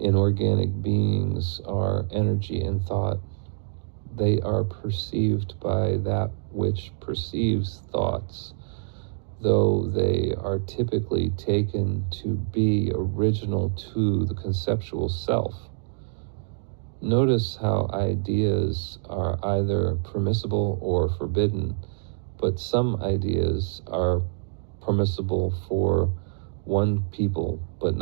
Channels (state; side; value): silent; left; digital silence